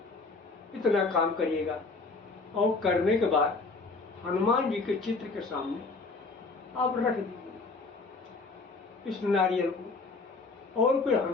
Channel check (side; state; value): right; quieter; 3.8 dB